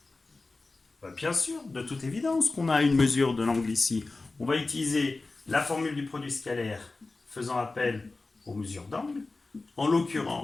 Bien sûr, de toute évidence qu'on a une mesure de l'angle ici. On va utiliser la formule du produit scalaire faisant appel aux mesures d'angle. En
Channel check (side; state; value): right; quieter; 3.5 dB